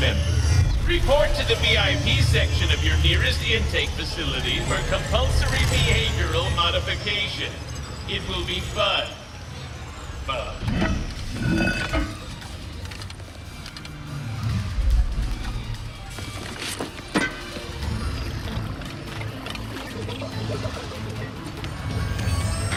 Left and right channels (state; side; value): identical; both; correlation 1.00